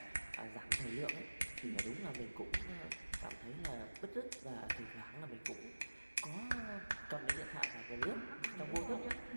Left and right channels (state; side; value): inverted; both; correlation -1.00